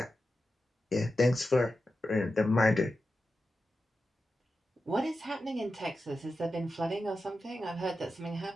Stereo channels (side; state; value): both; normal; correlation 0.91